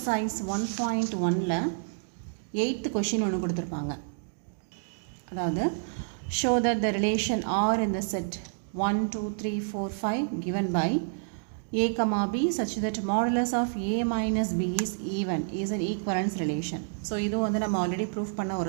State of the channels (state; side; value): silent; left; digital silence